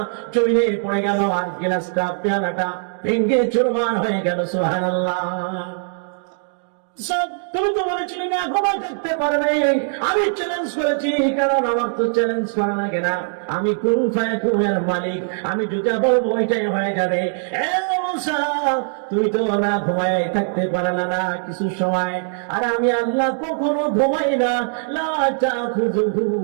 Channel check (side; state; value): left; silent; digital silence